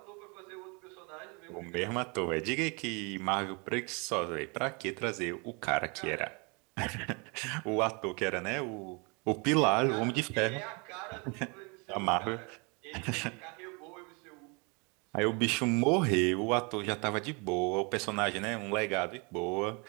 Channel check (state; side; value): quieter; left; 31.6 dB